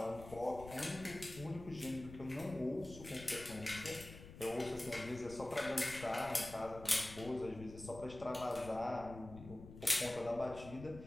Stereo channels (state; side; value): noise; left; rumble, 14 dB below the sound